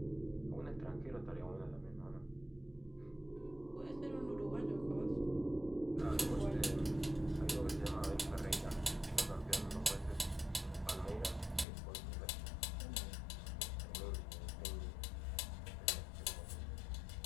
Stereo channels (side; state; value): right; drops out; at 11.7 s